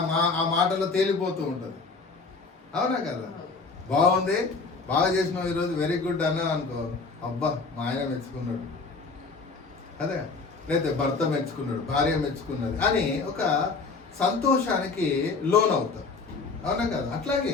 ఆ మాటలో తేలిపోతూ ఉంటుంది, అవునా కదా? బాగుంది, బాగా చేసినావు ఈరోజు, వెరీ గుడ్ అన్నా అనుకో, అబ్బా మా ఆయన మెచ్చుకున్నాడు, అదే లేకపోతే భర్త మెచ్చుకున్నాడు, భార్య మెచ్చుకున్నది అని ఒక సంతోషానికి లోన్ అవుతారు, అవునా కదా?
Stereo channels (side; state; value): right; quieter; 4.2 dB